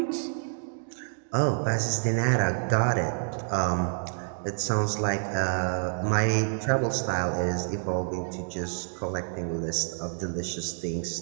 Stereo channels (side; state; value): left; silent; digital silence